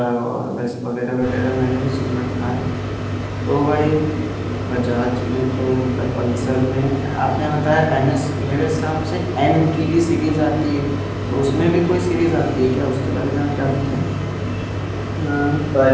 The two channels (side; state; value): both; identical; correlation 1.00